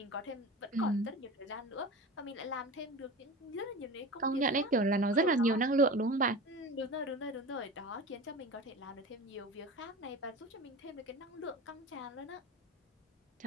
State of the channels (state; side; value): normal; both; correlation 0.32